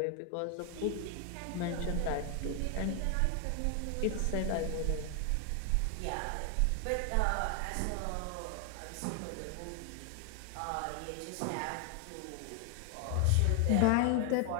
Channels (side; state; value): both; different; correlation 0.00